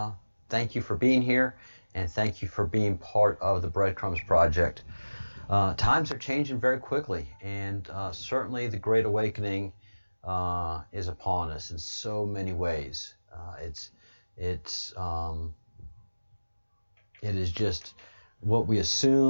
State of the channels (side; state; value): both; inverted; correlation -1.00